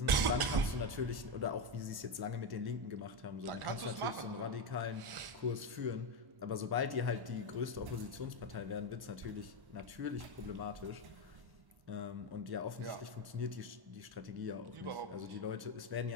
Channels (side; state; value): left; late; 1.1 ms